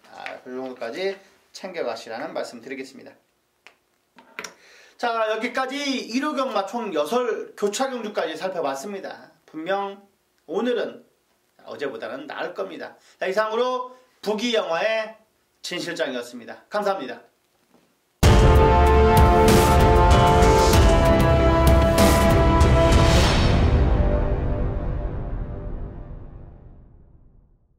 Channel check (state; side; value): identical; both; correlation 1.00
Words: 그 정도까지 챙겨가시라는 말씀 드리겠습니다. 자, 여기까지 1호 경마 총 6 교차 경주까지 살펴봤습니다. 분명 오늘은 어제보다는 나을 겁니다. 자, 이상으로 부기영화의 진실장이었습니다. 감사합니다.